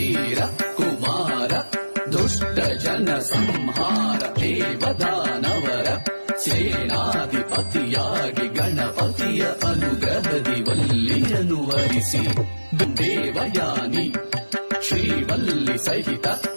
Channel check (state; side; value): inverted; both; correlation -1.00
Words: ಕುಮಾರ ದುಷ್ಟ ಜನ ಸಂಹಾರ ದೇವದಾನವರ ಸೇನಾಧಿಪತಿಯಾಗಿ ಗಣಪತಿಯ ಅನುಗ್ರಹದಿ ವಲ್ಲಿಯನ್ನು ವರಿಸಿ ದೇವಯಾನಿ ಶ್ರೀವಲ್ಲಿ ಸಹಿತ